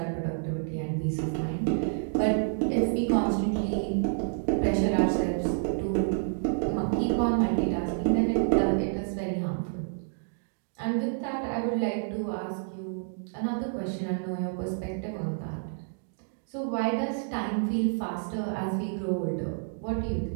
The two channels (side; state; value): left; silent; digital silence